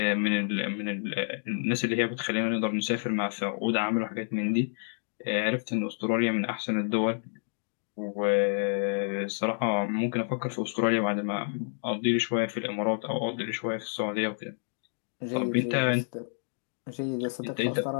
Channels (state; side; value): silent; right; digital silence